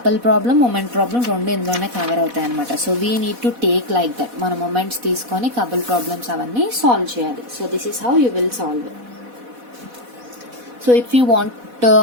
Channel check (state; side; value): late; left; 4.1 ms